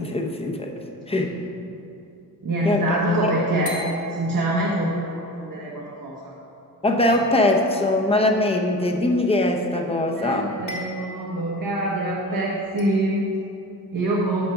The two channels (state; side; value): normal; both; correlation 0.35